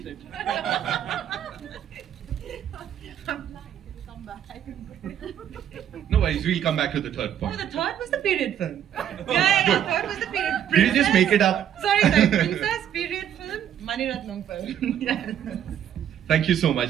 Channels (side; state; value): left; quieter; 10.0 dB